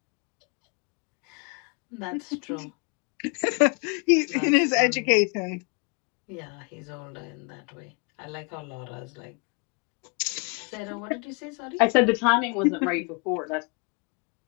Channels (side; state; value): right; quieter; 33.7 dB